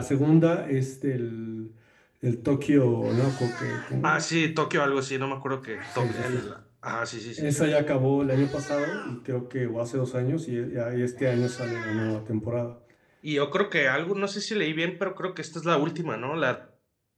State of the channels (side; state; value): both; identical; correlation 1.00